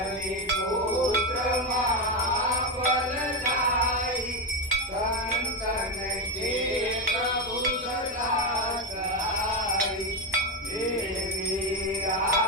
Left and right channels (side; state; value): both; normal; correlation 0.11